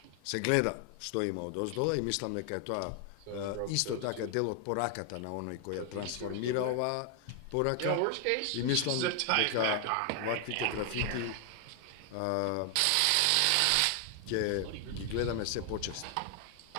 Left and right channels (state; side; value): different; both; correlation 0.00